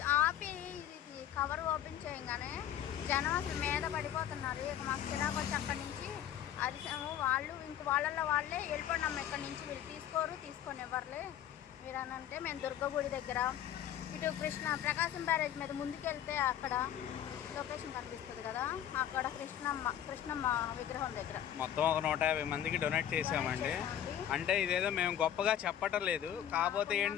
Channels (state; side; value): quieter; right; 10.7 dB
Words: ఆపి ఇది కవర్ ఓపెన్ చేయగానే జనం అసలు మీద పడిపోతున్నారు. ఇక మాకు చిరాకు వచ్చి అక్కడి నుంచి అరిసాము. వాళ్ళు ఇంక వాళ్ళే వెళ్ళిపోయినాము ఇక్కడి నుంచి. వీళ్ళు తీసుకొని ఇవ్వర్లే మీరు అని అంటే మేము దుర్గగుడి దగ్గర ఇటు ప్రకాశం బ్యారేజ్ మీద ముందుకెళ్తే అక్కడ లొకేషన్ కనిపిస్తుంది కదా, అక్కడ కృష్ణమ్మ విగ్రహం దగ్గర మొత్తం ఒక 150 మందికి డొనేట్ చేసామండి. అంటే ఇదేదో మేము గొప్పగా చెప్పటం లేదు, కాకపోతే